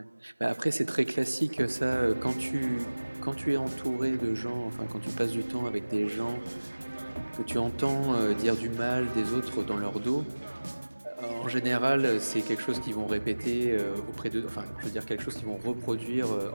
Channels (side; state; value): both; inverted; correlation -1.00